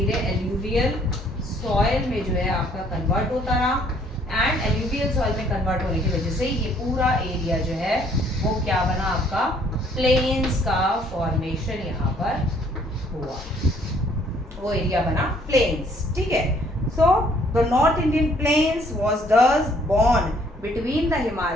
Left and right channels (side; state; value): both; normal; correlation 0.62